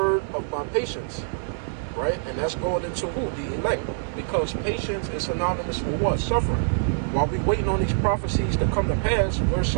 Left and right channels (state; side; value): silent; left; digital silence